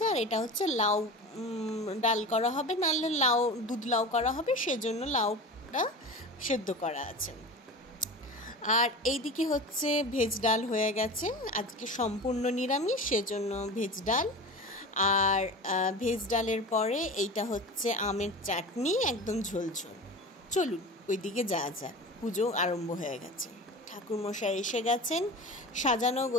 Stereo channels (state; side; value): normal; both; correlation 0.32